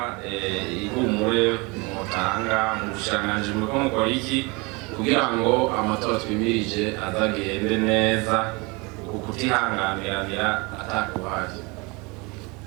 ihumure mutanga mu bushikiranganji muriko mukora iki kugira ngo amatora twimirije azagende neza kutihanganiranira atakuhari.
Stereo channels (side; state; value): left; quieter; 27.2 dB